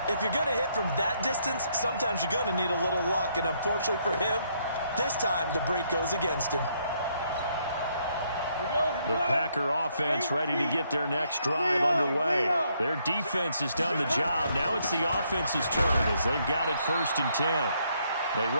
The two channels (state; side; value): inverted; both; correlation -0.73